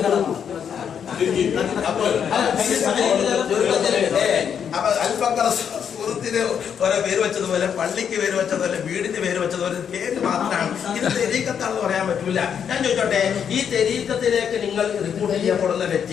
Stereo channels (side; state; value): right; quieter; 7.9 dB